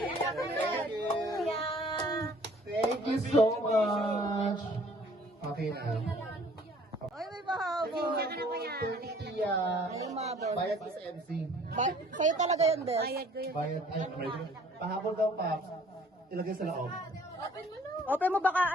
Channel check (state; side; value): normal; both; correlation 0.55